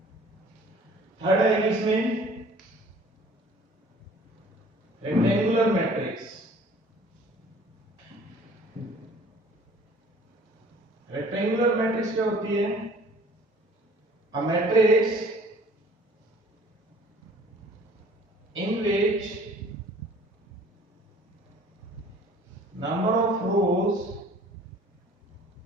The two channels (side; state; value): both; normal; correlation 0.52